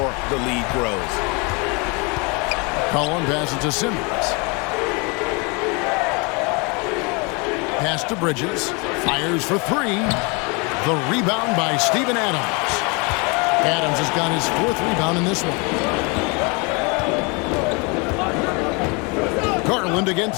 the lead grows. Cullen passes to Simmons. Pass to Bridges. Fires for 3. The rebound by Steven Adams. Adams has got his 4th rebound in this one. Garland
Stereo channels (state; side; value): quieter; right; 30.4 dB